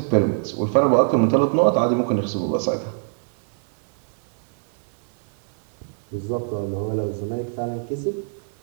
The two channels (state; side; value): silent; left; digital silence